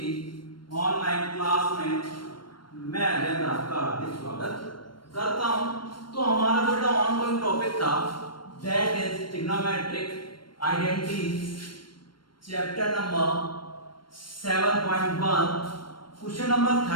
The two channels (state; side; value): late; right; 0.72 ms